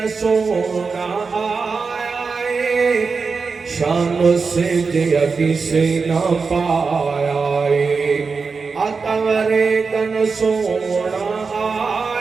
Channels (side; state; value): left; quieter; 4.8 dB